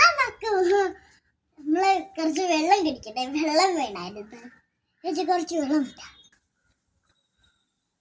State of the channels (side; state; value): both; identical; correlation 1.00